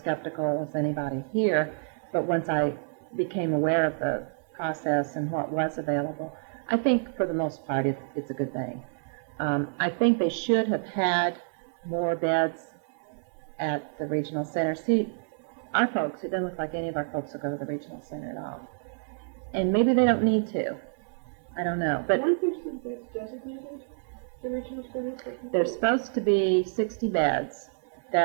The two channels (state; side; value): silent; left; 59 dB below the other